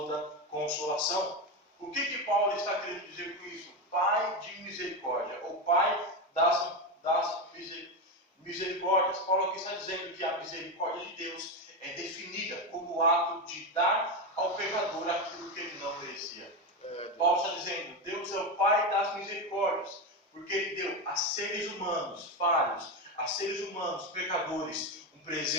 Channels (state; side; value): normal; both; correlation 0.14